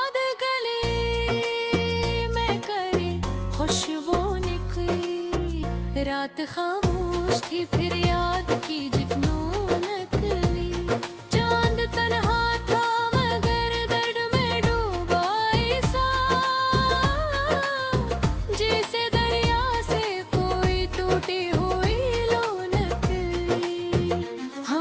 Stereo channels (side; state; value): both; identical; correlation 1.00